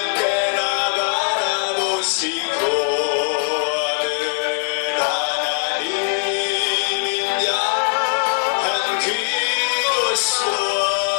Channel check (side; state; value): right; silent; digital silence